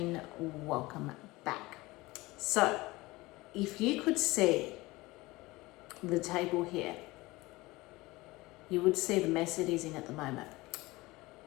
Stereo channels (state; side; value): quieter; right; 20.9 dB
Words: welcome back. So, if you could see the table here, you would see the mess it is in at the moment.